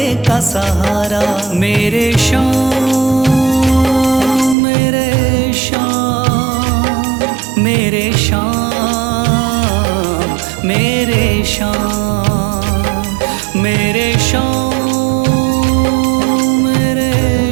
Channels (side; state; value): left; drops out; at 4.5 s